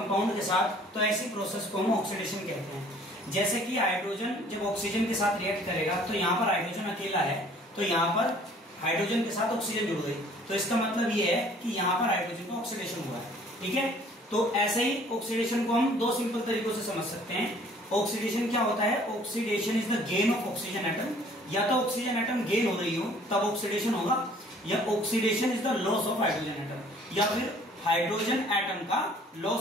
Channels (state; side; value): normal; both; correlation 0.55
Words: के साथ, तो ऐसी प्रोसेस को हम ऑक्सीडेशन कहते हैं। जैसे कि हाइड्रोजन जब ऑक्सीजन के साथ रिएक्ट करेगा तो यहाँ पर हाइड्रोजन अकेला है, तो यहाँ पर हाइड्रोजन के साथ ऑक्सीजन जुड़ गई, तो इसका मतलब ये है कि यहाँ पर हाइड्रोजन का ऑक्सीडेशन हुआ है। ठीक है, तो ऐसे ही ऑक्सीडेशन को हम दो सिंपल तरीकों से समझ सकते हैं। ऑक्सीडेशन क्या होता है? Oxidation is the gain of oxygen atom. या तो ऑक्सीजन एटम गेन हो रही हो तब ऑक्सीडेशन होगा, या oxidation is the loss of hydrogen atom, या फिर हाइड्रोजन एटम का